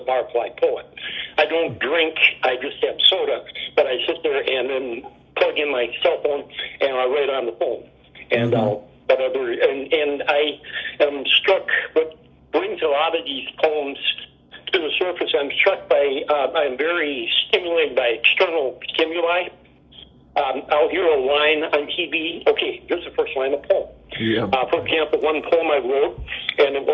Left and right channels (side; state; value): both; identical; correlation 1.00